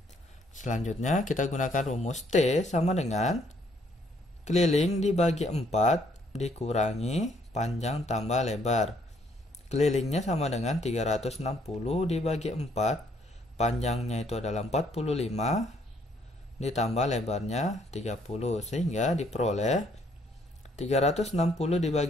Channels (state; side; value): normal; both; correlation 0.67